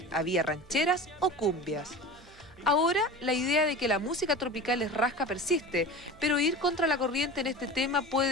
había rancheras o cumbias. Ahora, la idea de que la música tropical es rasca persiste, pero ir contra la corriente en este tema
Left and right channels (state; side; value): noise; right; hum, 25 dB below the sound